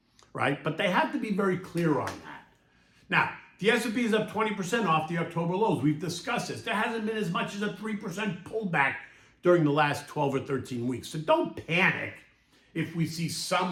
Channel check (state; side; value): identical; both; correlation 1.00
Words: right? But they have to be very clear on that. Now, the S&P is up 20% off the October lows. We've discussed this. There hasn't been as much as a 3% pullback during the last 12 or 13 weeks. So don't panic if we see